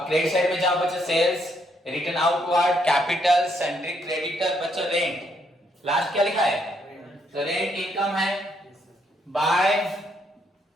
क्रेडिट साइड में जाओ बच्चों, sales, return outward, capital, sundry creditor, बच्चों रेंट लास्ट क्या लिखा है? तो रेंट इनकम है बाय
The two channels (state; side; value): normal; both; correlation 0.73